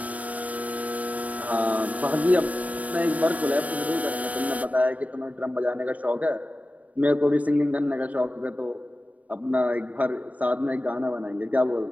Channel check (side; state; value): left; late; 0.071 ms